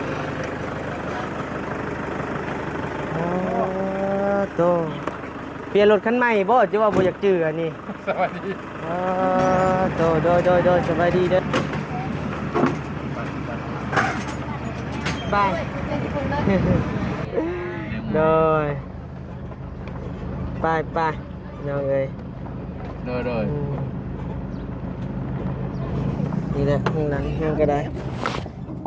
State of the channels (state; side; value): identical; both; correlation 1.00